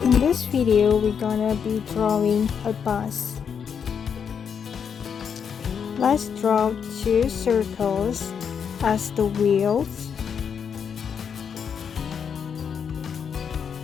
In this video, we're gonna be drawing a bus. Let's draw two circles as the wheels.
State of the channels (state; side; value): quieter; right; 7.1 dB